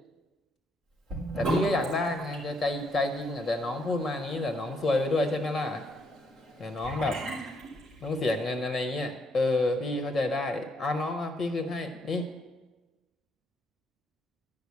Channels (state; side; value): normal; both; correlation 0.73